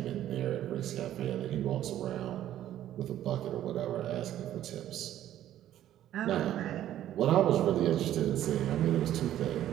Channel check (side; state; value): left; quieter; 12.2 dB